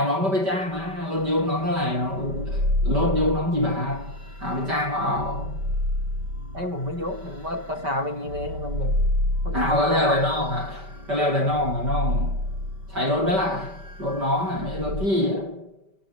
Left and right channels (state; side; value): late; left; 5.2 ms